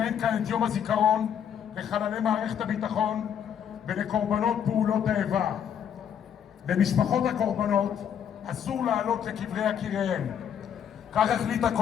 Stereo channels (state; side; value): quieter; right; 8.7 dB